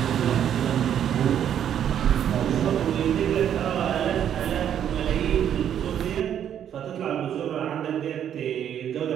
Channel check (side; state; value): left; quieter; 9.6 dB